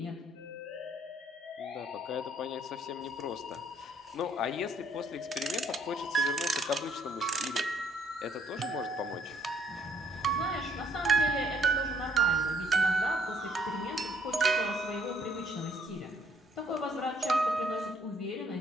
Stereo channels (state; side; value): normal; both; correlation 0.65